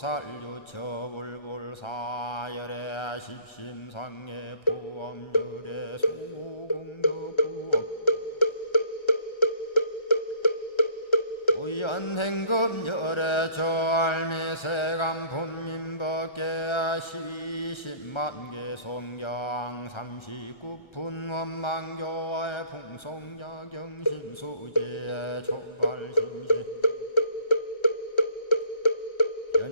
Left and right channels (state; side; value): late; right; 1.3 ms